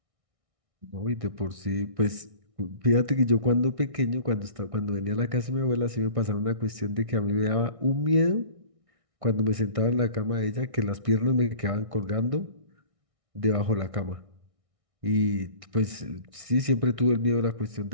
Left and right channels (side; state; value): left; late; 1.6 ms